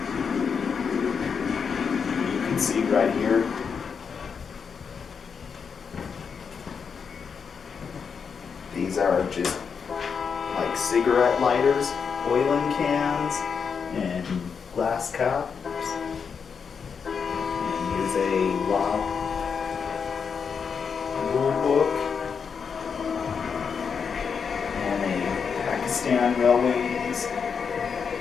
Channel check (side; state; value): right; quieter; 6.2 dB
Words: You can see right here. These are just like cigarette lighters, oiling cans, and glass cups. And here's a law rule book and a Pakistan Railways